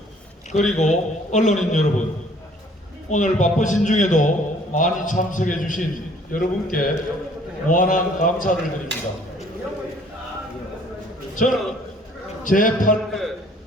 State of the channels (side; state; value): both; normal; correlation 0.57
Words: 그리고 언론인 여러분, 오늘 바쁘신 중에도 많이 참석해 주신 여러분께 무한한 감사를 드립니다. 저는 제8회